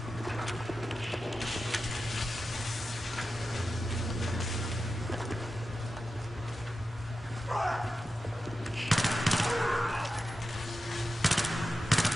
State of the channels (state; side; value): normal; both; correlation 0.92